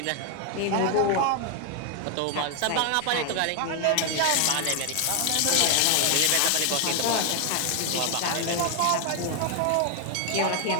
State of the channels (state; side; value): different; both; correlation 0.00